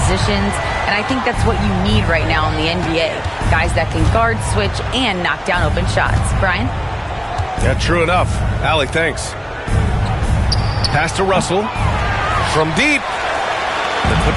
and I think that's what you need right now in the NBA. Guys that can guard, switch, and knock down open shots. Brian? Yeah, true enough. Allie, thanks. Pass to Russell. From deep. The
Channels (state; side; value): identical; both; correlation 1.00